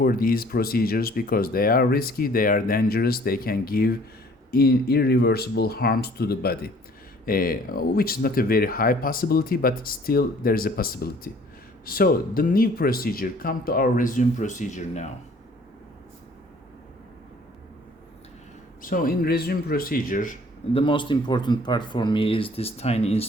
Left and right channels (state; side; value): normal; both; correlation 0.55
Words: these procedures because they are risky, they are dangerous, they can give irreversible harms to the body, which is not a very high possibility, but still there is a possibility. So the new procedure, come to our Rezum procedure now. So in Rezum procedure, the most important part for me is this tiny